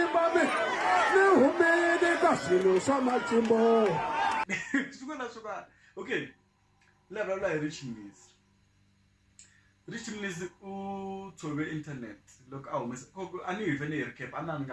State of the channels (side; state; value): both; identical; correlation 1.00